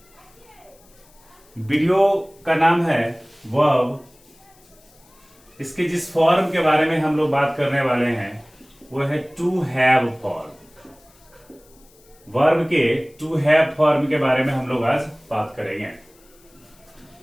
वीडियो का नाम है वर्ब। इसके जिस फॉर्म के बारे में हम लोग बात करने वाले हैं वो है टू हैव फॉर्म। वर्ब के टू हैव फॉर्म के बारे में हम लोग आज बात करेंगे।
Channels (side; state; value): left; noise; hiss, 29 dB below the sound